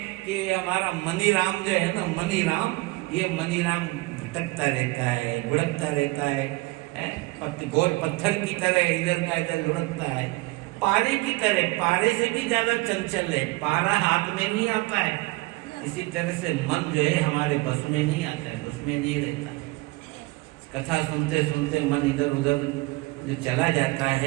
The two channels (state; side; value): quieter; left; 22.7 dB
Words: कि हमारा मनी राम जो है ना, मनी राम, ये मनी राम भटकता रहता है, लुढ़कता रहता है, गोल पत्थर की तरह इधर का इधर लुढ़कता है, पारे की तरह, पारे से भी ज्यादा चंचल है, पारा हाथ में नहीं आता है। इसी तरह से मन जो है हमारे बस में नहीं आता है, बस में नहीं रहता। कथा सुनते सुनते मन इधर उधर जो चला जाता